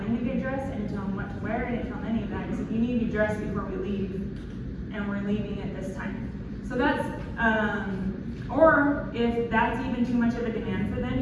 to get dressed, I didn't tell him what to wear, I didn't tell him any of that. I said, you need to be dressed before we leave, and we're leaving at this time. So that's, or if that's even too much of a demand for them,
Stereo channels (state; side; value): identical; both; correlation 1.00